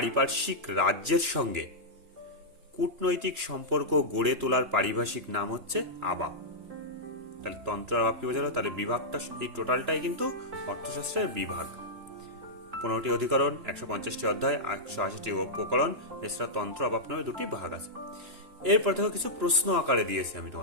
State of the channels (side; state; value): left; late; 3.0 ms